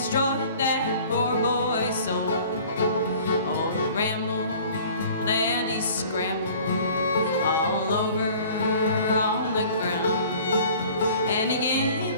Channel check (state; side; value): inverted; both; correlation -0.49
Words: that poor boy's soul. Oh, he rambled and he scrambled all over on the ground, and he gave